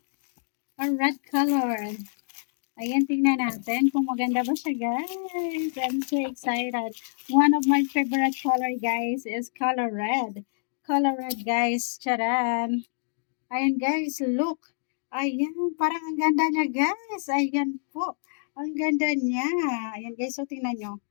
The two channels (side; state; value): right; silent; digital silence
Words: a red color. Ayan, tingnan natin kung maganda ba siya guys. I'm so excited. One of my favorite color guys is color red. Color red guys, charan. Ayan guys, look. Ayan, parang ang ganda niya guys. Ayan po. Ang ganda niya. Ayan guys, so tingnan nyo.